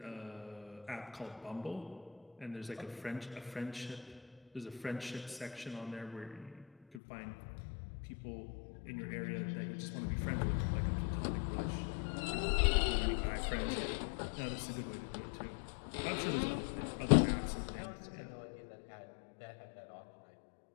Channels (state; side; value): drops out; right; at 7.0 s